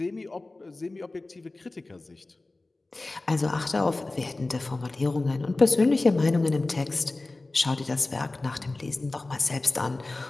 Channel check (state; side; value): quieter; right; 3.1 dB